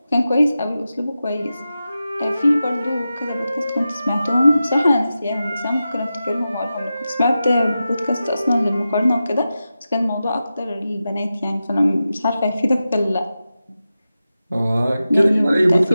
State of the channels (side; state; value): both; inverted; correlation -0.92